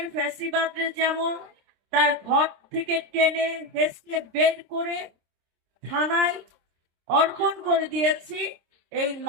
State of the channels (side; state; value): left; late; 26 ms